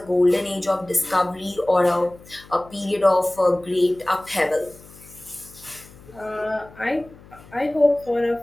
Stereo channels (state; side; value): noise; left; hum, 22 dB below the sound